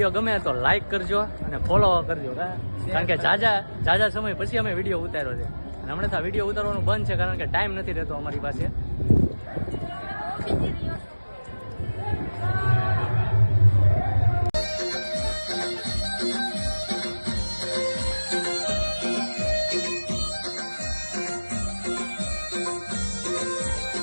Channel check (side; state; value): both; inverted; correlation -1.00